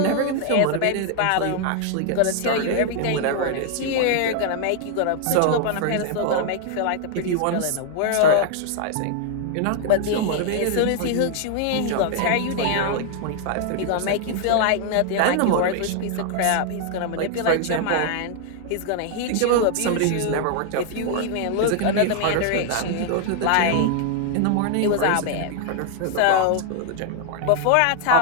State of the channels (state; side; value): different; both; correlation 0.00